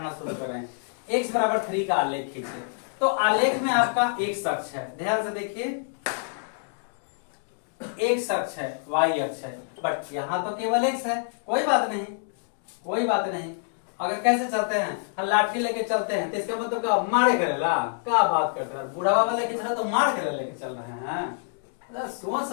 शुरू करें। x बराबर 3 का आलेख खींचे, तो आलेख में आपका एक अक्ष है, ध्यान से देखिए, एक अक्ष है, y अक्ष है, बट यहाँ तो केवल x है। कोई बात नहीं, कोई बात नहीं। अगर कैसे चलते हैं, लाठी लेके चलते हैं तो इसका मतलब क्या, मारे करेला, क्या बात कर रहा है, बूढ़ा बाबा लेके चल रहे तो मार करे लेके चल रहे हैं, सोच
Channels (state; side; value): silent; right; digital silence